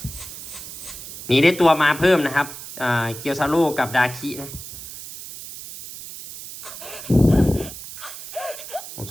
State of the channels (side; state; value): right; noise; hiss, 12 dB below the sound